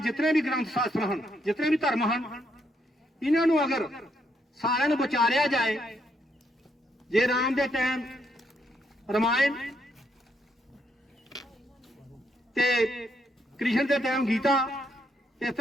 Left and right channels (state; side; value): normal; both; correlation 0.76